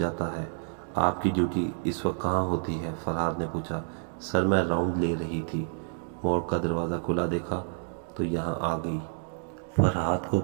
ہے۔ آپ کی ڈیوٹی اس وقت کہاں ہوتی ہے؟ فرحاد نے پوچھا۔ سر، میں راؤنڈ لے رہی تھی، مورگ کا دروازہ کھلا دیکھا تو یہاں آ گئی۔ فرحاد کو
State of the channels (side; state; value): left; silent; digital silence